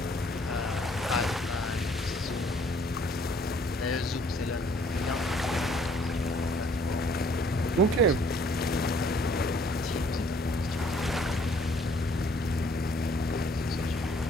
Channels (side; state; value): both; normal; correlation 0.61